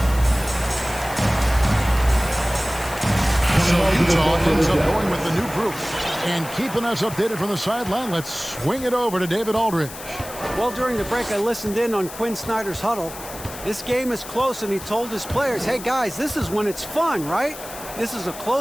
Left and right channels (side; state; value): left; noise; hiss, 13 dB below the sound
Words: So Utah ends up going with the new group. And keeping us updated from the sideline, let's swing it over to David Aldridge. Well, during the break, I listened in on Quinn Snyder's huddle. This game is close, and he told his players, hey, guys, this is when it's fun, right? This is a